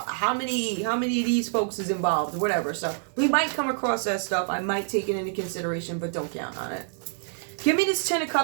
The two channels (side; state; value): left; silent; 60 dB below the other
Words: how many of these folks is involved or whatever. So we might come across that stuff. I might take it into consideration, but don't count on it. Give me this Ten of